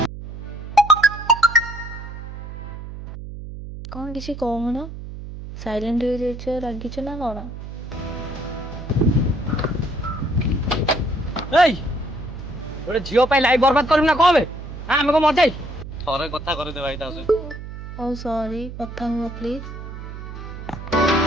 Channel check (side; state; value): right; noise; hum, 10 dB below the sound